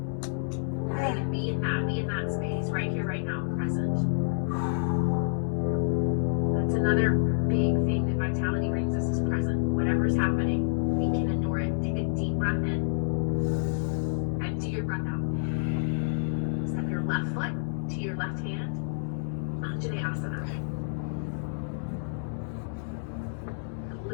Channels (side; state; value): right; silent; digital silence